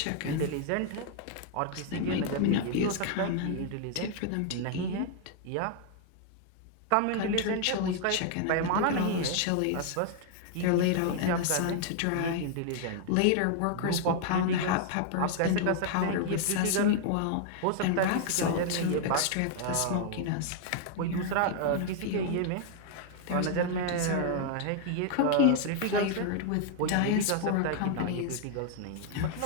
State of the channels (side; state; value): both; different; correlation 0.00